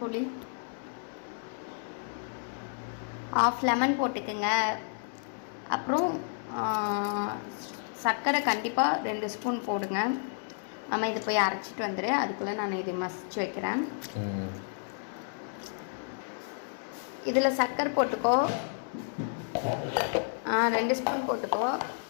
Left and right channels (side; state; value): right; silent; digital silence